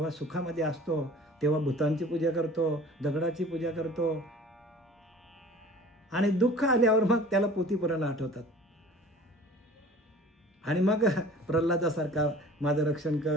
सुखामध्ये असतो तेव्हा भूतांची पूजा करतो, दगडाची पूजा करतो. आणि दुःख आल्यावर मग त्याला पोथीपुराण आठवतात. आणि मग प्रल्हादासारखा माझं रक्षण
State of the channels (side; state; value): both; normal; correlation 0.45